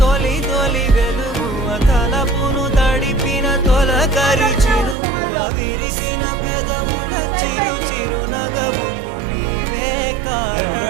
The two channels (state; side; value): drops out; left; at 5.0 s